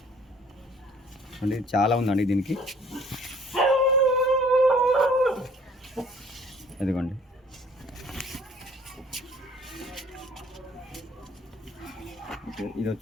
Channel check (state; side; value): normal; both; correlation 0.55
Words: అండి. చాలా ఉందండి దీనికి. అదిగోండి ఓకే. ఇది